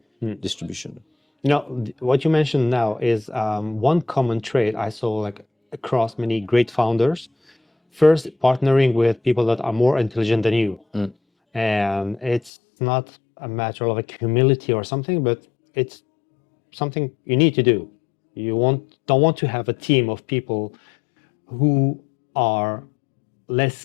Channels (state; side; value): drops out; right; at 12.5 s